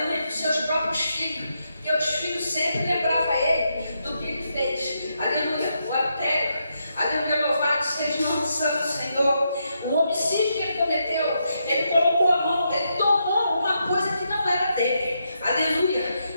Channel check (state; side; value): inverted; both; correlation -0.81